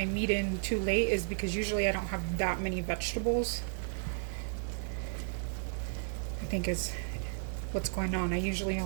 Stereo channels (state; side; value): silent; left; digital silence